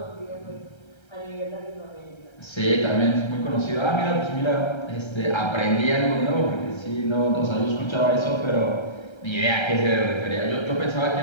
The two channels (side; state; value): right; late; 1.3 ms